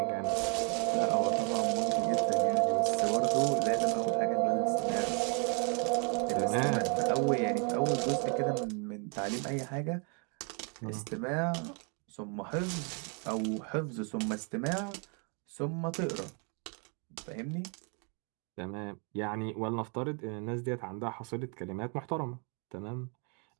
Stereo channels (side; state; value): left; quieter; 36.9 dB